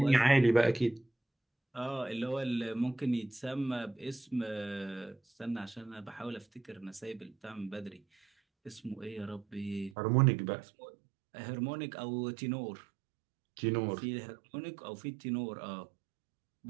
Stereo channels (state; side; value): drops out; left; at 10.0 s